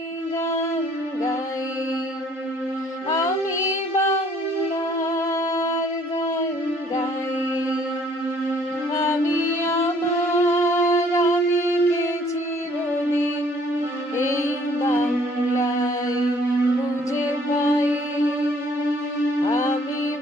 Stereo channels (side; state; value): both; normal; correlation 0.60